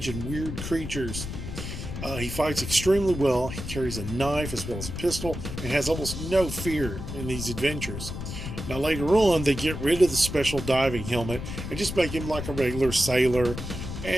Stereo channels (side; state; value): left; noise; rumble, 7 dB below the sound